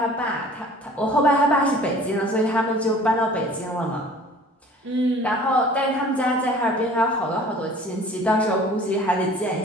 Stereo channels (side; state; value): both; normal; correlation 0.48